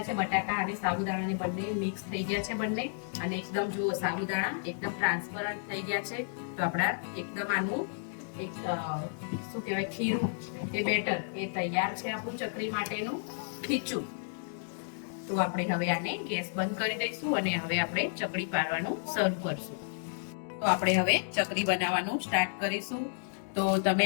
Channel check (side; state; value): right; silent; digital silence